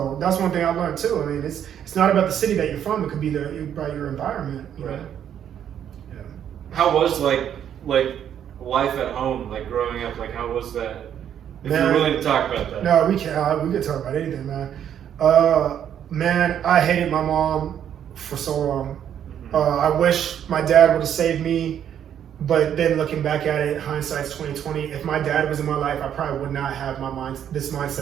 that's one thing I learned too. I mean, it's not about the city that you're from. It could be about your environment. Right. Yeah. How was like life at home, like growing up? Like, how was that? If you're willing to talk about that. No, we can't. We could talk about anything, man. Man, I hated my mom for so long. Mm-hmm. I wish my dad would have saved me. But then looking back at it, hindsight's 20/20. If my dad was in my life, I probably would not have this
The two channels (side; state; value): left; quieter; 9.5 dB